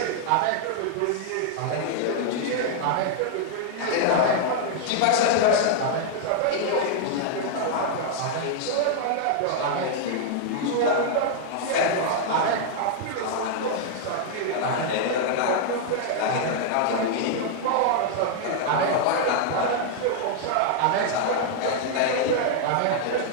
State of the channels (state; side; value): different; both; correlation -0.01